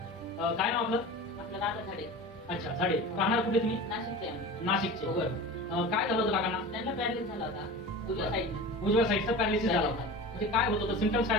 काय नाव आपलं? आपलं राधा झाडे. अच्छा, झाडे. राहणार कुठे तुम्ही? नाशिकचे आम्ही. नाशिकचे. बरं. काय झालं होतं काकांना? त्यांना पॅरालिसिस झाला होता उजव्या साईडनं. उजव्या साईडचा पॅरालिसिस झाला होता. म्हणजे काय होत होतं, सिम्पटम्स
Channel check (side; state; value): both; normal; correlation 0.34